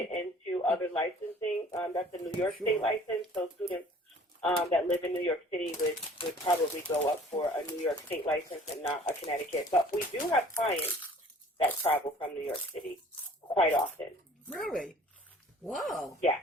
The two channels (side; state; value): both; normal; correlation 0.51